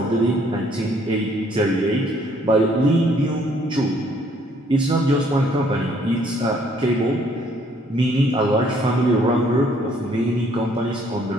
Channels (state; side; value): normal; both; correlation 0.64